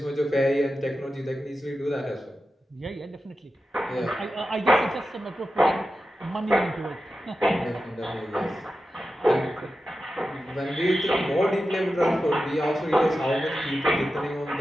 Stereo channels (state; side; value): normal; both; correlation 0.92